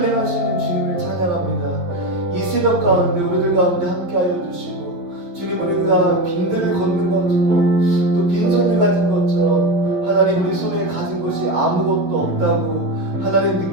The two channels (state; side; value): late; left; 11 ms